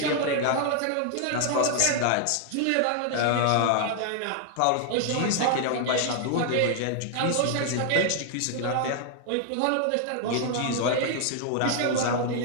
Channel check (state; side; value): different; both; correlation 0.00